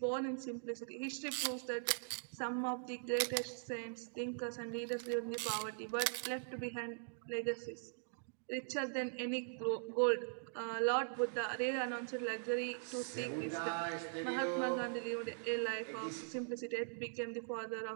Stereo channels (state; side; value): silent; left; digital silence